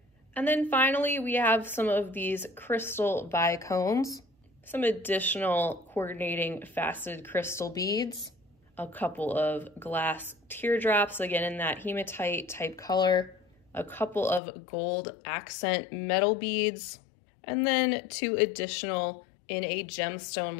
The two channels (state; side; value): drops out; right; at 14.4 s